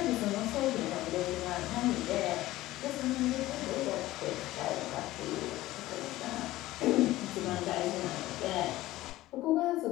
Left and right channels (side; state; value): right; quieter; 16.6 dB